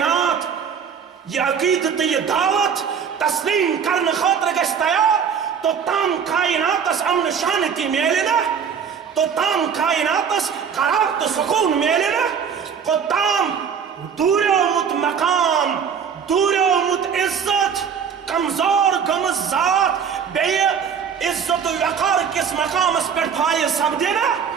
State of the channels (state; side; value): quieter; left; 7.1 dB